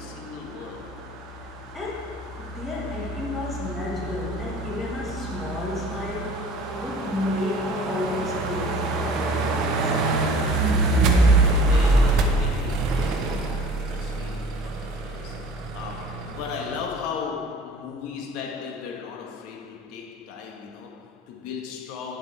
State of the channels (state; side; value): normal; both; correlation 0.45